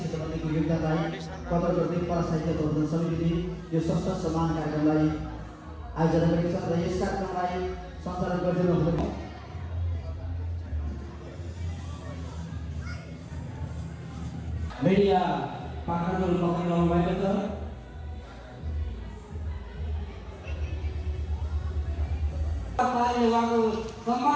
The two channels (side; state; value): both; identical; correlation 1.00